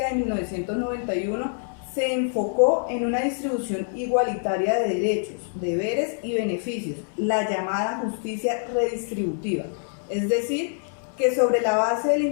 de 1991 se enfocó en una distribución igualitaria de derechos, deberes y beneficios, la llamada justicia redistributiva, es decir, que sobre la base del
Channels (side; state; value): right; silent; digital silence